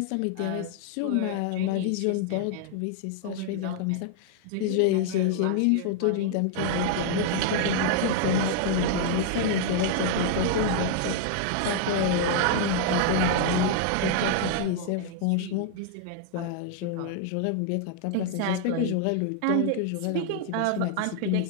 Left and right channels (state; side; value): different; both; correlation 0.00